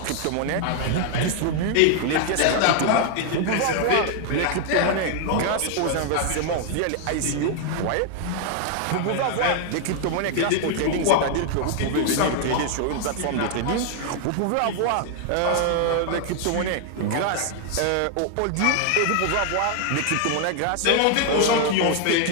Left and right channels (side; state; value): both; different; correlation 0.00